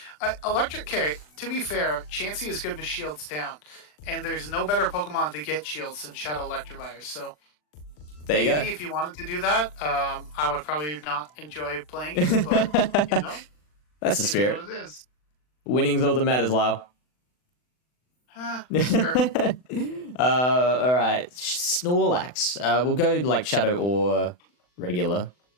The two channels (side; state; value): right; late; 40 ms